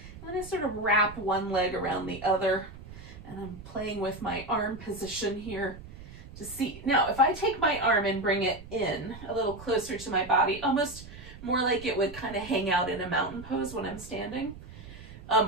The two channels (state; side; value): noise; right; rumble, 16 dB below the sound